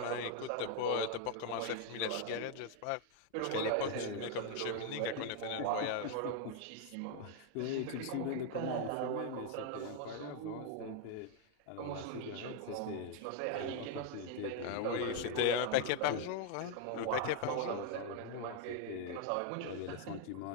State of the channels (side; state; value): both; different; correlation 0.00